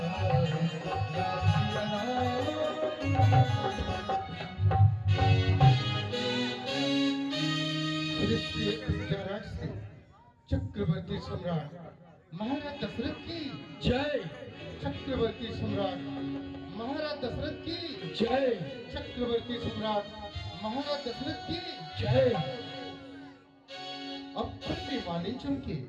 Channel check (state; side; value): identical; both; correlation 1.00